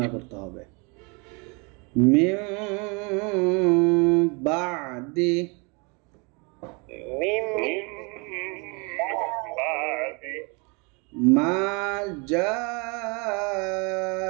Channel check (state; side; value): quieter; left; 31.5 dB